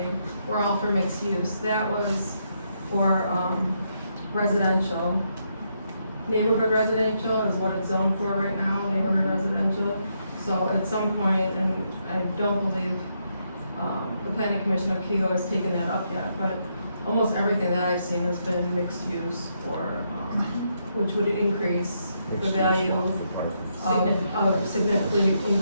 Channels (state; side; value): inverted; both; correlation -0.78